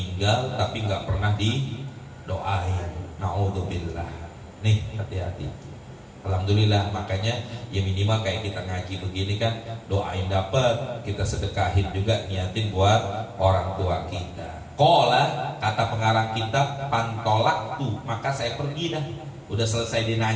tapi nggak pernah didoain. Naudzubillah. Nih hati-hati. Alhamdulillah, makanya ya minimal kayak kita ngaji begini kan, doain dapat, kita sedekahin juga, niatin buat orang tua kita. Qala, kata pengarang kitab, pantolak tuh, maka saya pergi dah. Udah selesai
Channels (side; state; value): both; identical; correlation 1.00